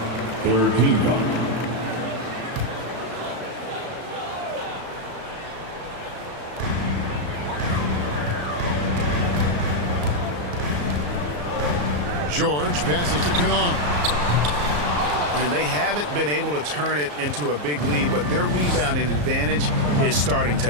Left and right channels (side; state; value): left; late; 34 ms